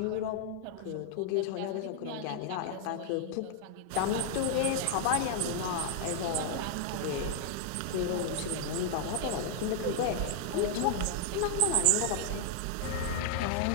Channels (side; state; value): both; different; correlation 0.00